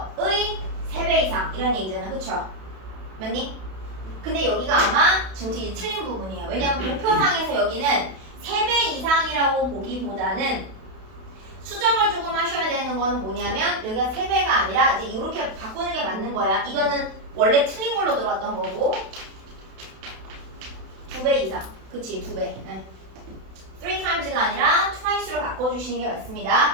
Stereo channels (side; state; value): left; late; 32 ms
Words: 3배 이상 이런 얘기잖아, 그쵸? 맞니? 근데 여기가 아마 지금 이제 틀린 부분이에요. 왜냐면 도표상에서 여기는 3배 이상이라고 보기보다는 수정을 조금 하셔야 되는 거는 뭐냐면 여기가 3배가 아니라 이제 이렇게 바꾸는 게 맞는 거야. 이거는 원래 틀린 걸로 들어왔던 거고 2배 이상, 그치? 2배. 네. 3x가 아니라 twice로 바꿔주시는 게